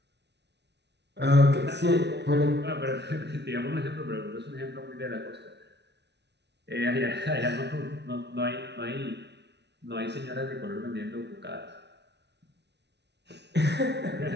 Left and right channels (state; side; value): late; left; 0.50 ms